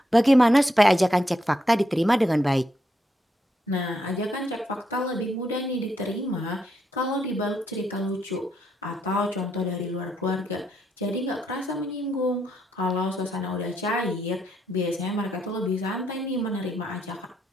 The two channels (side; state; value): both; normal; correlation 0.78